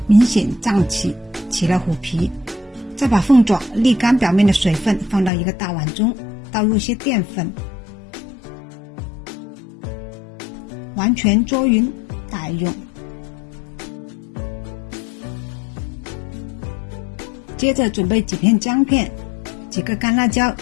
明显胀起，起了虎皮。再把凤爪沥干表面的水分，放到一个大碗中，倒入些淀粉，完全捉匀打匀。接着准备几片姜片，几个干辣椒，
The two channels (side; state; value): right; drops out; at 5.3 s